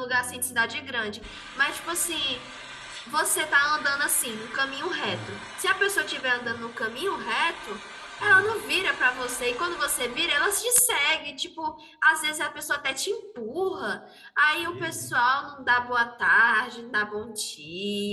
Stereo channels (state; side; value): identical; both; correlation 1.00